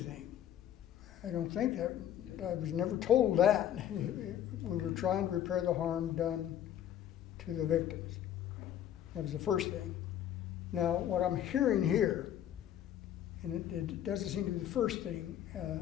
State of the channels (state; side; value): quieter; right; 10.8 dB